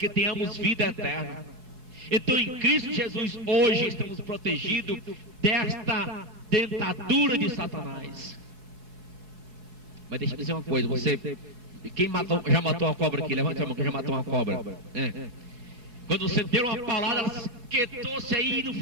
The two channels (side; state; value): left; late; 4.7 ms